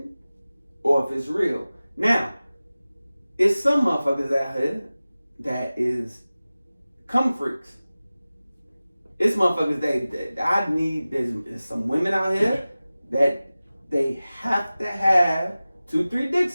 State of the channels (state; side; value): inverted; both; correlation -0.97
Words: or if it's real. Now, it's some motherfuckers out here that is cum freaks. It's motherfuckers that I need. There's some women out here that they have to have 2-3